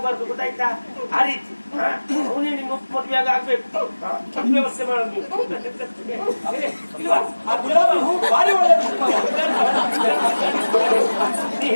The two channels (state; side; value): inverted; both; correlation -1.00